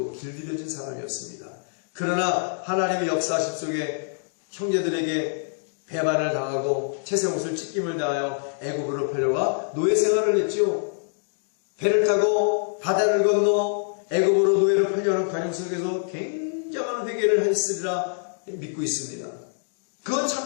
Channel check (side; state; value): right; silent; digital silence